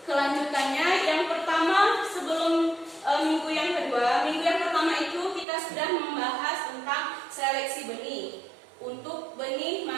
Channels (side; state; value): left; drops out; at 5.5 s